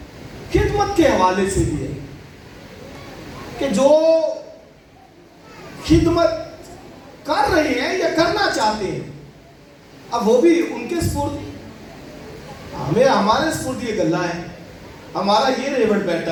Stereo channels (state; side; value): identical; both; correlation 1.00